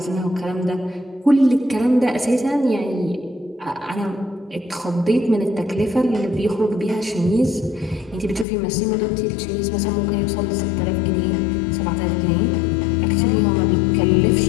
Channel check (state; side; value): drops out; right; at 8.5 s